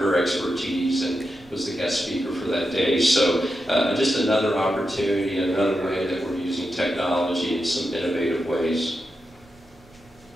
expertise and was the guest speaker for that day. So just another opportunity, another way that we're using technology in some innovative ways.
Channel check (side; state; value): right; noise; rumble, 27 dB below the sound